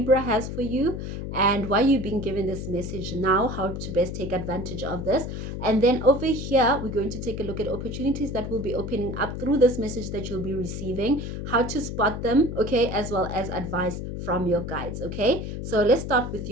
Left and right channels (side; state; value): left; noise; hum, 6 dB below the sound